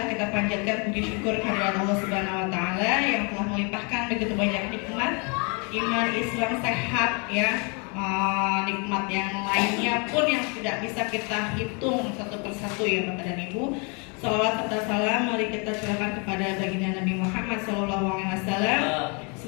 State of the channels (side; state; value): right; quieter; 33.9 dB